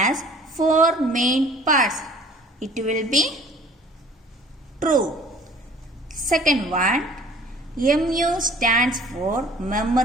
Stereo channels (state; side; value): normal; both; correlation 0.50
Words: 4 main parts. It will be true. Second one, MU stands for